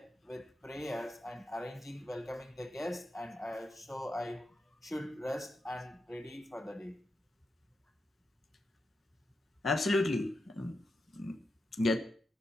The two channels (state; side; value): normal; both; correlation 0.87